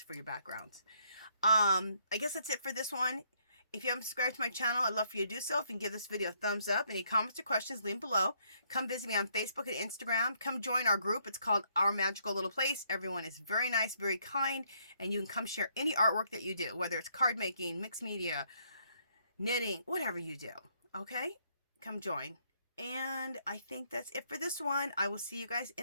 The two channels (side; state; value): both; inverted; correlation -0.70